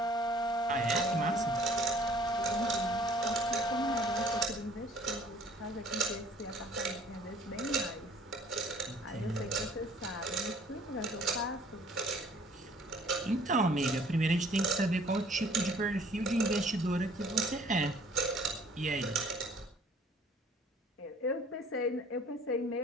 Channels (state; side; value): normal; both; correlation 0.55